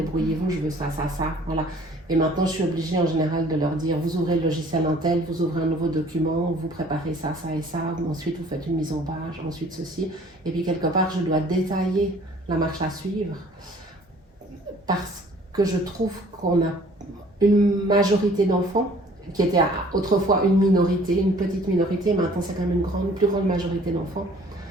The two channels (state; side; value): normal; both; correlation 0.54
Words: je veux ça, ça, ça, voilà. Et maintenant, je suis obligée en général de leur dire, vous ouvrez le logiciel Intel, vous ouvrez un nouveau document, vous préparez ça, ça et ça, ensuite vous faites une mise en page, ensuite ceci. Et puis quelque part, je dois détailler la marche à suivre parce que je trouve qu'on a une majorité d'enfants qui était autrefois une minorité, une petite minorité, maintenant c'est quand même une plus grande majorité d'enfants.